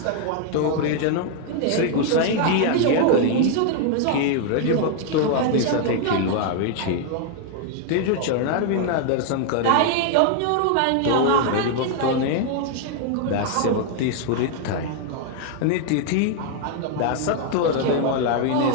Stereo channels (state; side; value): different; both; correlation 0.00